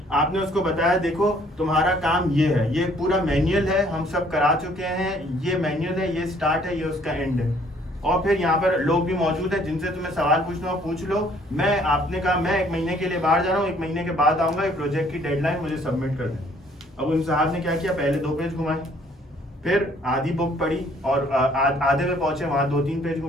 آپ نے اس کو بتایا دیکھو تمہارا کام یہ ہے, یہ پورا مینیول ہے, ہم سب کرا چکے ہیں, یہ مینیول ہے, یہ سٹارٹ ہے, یہ اس کا اینڈ ہے, اور پھر یہاں پر لوگ بھی موجود ہیں جن سے تمہیں سوال پوچھنا ہو پوچھ لو. میں, آپ نے کہا میں 1 مہینے کے لیے باہر جا رہا ہوں, 1 مہینے کے بعد آؤں گا, یہ پروجیکٹ کی ڈیڈ لائن مجھے سبمٹ کر دیں. اب ان صاحب نے کیا کیا, پہلے 2 پیج گھمائے, پھر آدھی بک پڑھی اور آدھے میں پہنچے, وہاں 2-3 پیج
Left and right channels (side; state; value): both; normal; correlation 0.61